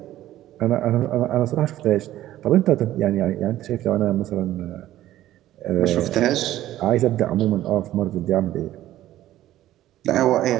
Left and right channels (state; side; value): quieter; left; 13.9 dB